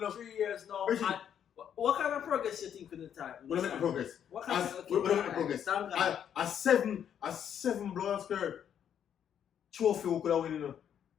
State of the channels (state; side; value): quieter; right; 9.0 dB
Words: 3 years now. Virgin. And what kind of progress you think in the time? What about the progress? What kind What about the progress? A seven blood skirt trophy we could have win, you know.